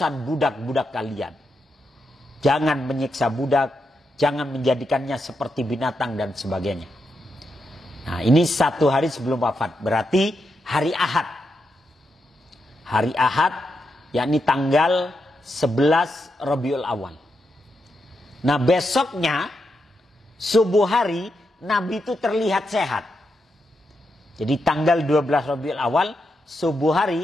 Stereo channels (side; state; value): both; normal; correlation 0.84